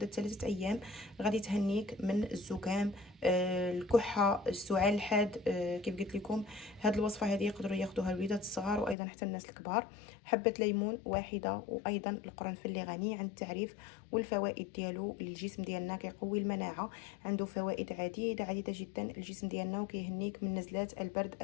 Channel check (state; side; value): drops out; right; at 9.0 s